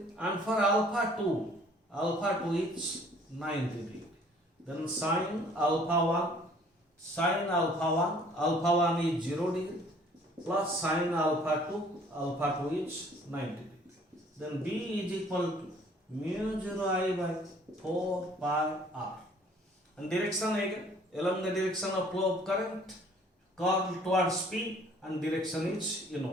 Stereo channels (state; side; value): normal; both; correlation 0.56